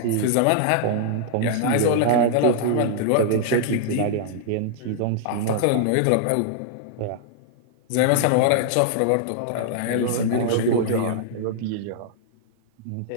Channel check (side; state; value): both; different; correlation -0.01